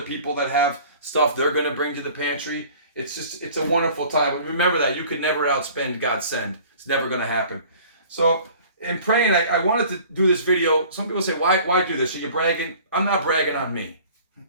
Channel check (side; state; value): both; inverted; correlation -0.48